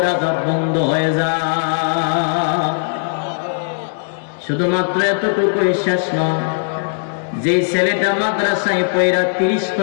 আযাব বন্ধ হয়ে যায়। শুধুমাত্র এতটুকুই শেষ নয়, যে ছেলেটা মাদ্রাসায় পয়রা 30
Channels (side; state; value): right; silent; digital silence